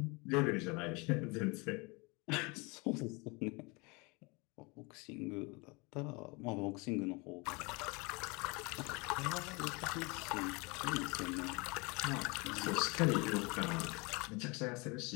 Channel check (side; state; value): right; quieter; 28.0 dB